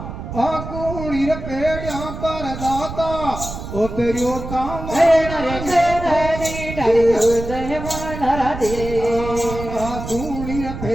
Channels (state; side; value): noise; right; rumble, 8 dB below the sound